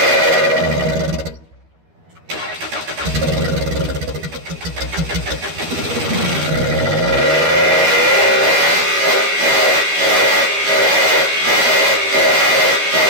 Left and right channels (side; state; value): left; late; 12 ms